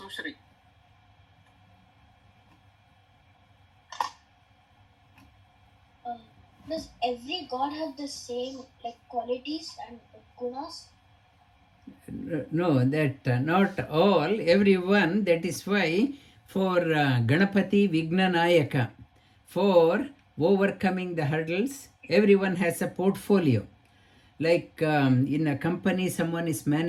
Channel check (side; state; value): both; identical; correlation 1.00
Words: Does every god have the same qualities and gunas? No, that not all, everyone. That is why for Ganapati Vignanayaka, for overcoming the hurdles, everyone has a portfolio. Like in a company, someone is